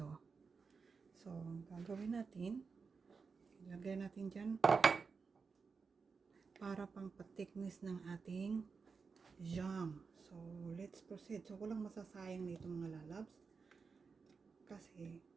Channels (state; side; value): quieter; left; 5.1 dB